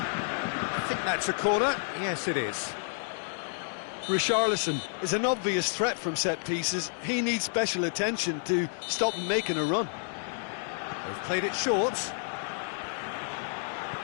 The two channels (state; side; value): silent; right; digital silence